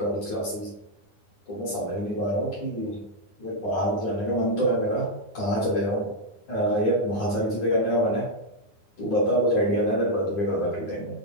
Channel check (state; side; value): late; right; 9.8 ms